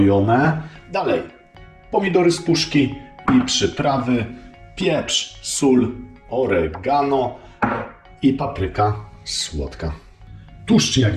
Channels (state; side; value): identical; both; correlation 1.00